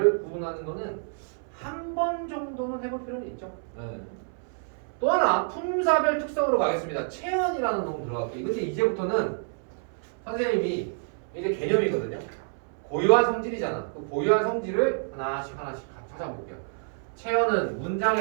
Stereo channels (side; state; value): left; silent; 59 dB below the other